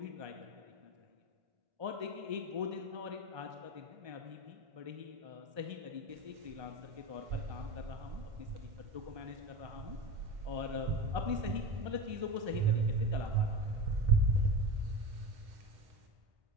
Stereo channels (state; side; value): late; left; 1.3 ms